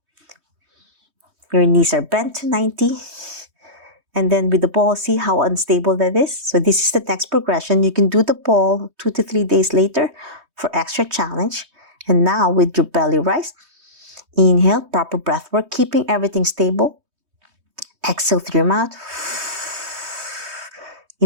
Your knees are bent to 90. And then with the ball, see how unstable that is? So this is the next progression. You can do the ball 2 to 3 days later for extra challenge. And now with your belly rise, inhale, proper breath work, keeping everything stable. Exhale through your mouth.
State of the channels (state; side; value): late; left; 3.2 ms